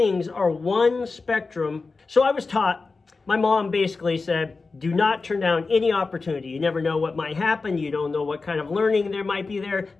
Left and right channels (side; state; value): right; quieter; 4.1 dB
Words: are one spectrum. So I was taught, my mom basically said, do not turn down any opportunity. You never know what might happen. You don't know what kind of learning there might be there,